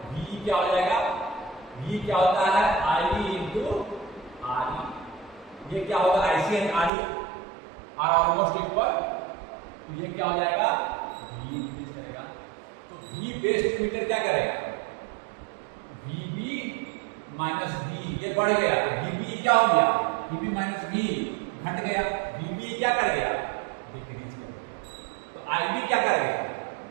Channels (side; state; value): left; drops out; at 6.9 s